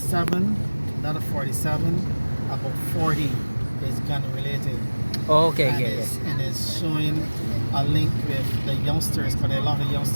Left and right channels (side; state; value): both; inverted; correlation -1.00